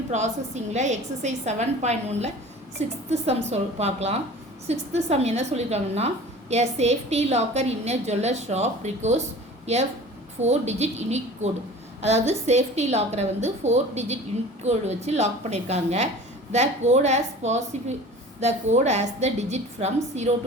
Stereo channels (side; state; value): both; normal; correlation 0.41